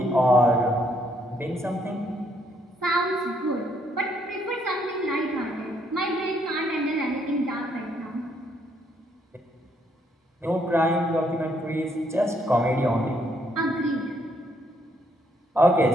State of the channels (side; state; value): both; normal; correlation 0.71